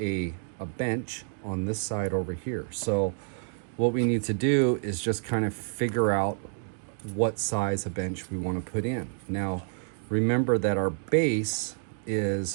bench on this side over here. So what we need to do is just kind of figure out what size of bench we want to put in. Now remember that our base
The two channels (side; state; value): left; silent; 59 dB below the other